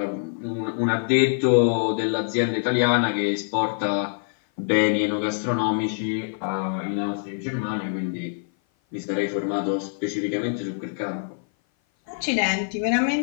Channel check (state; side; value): silent; right; 56 dB below the other